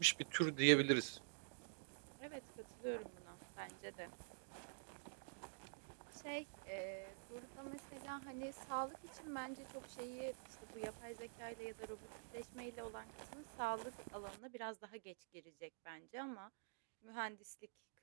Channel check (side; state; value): left; silent; digital silence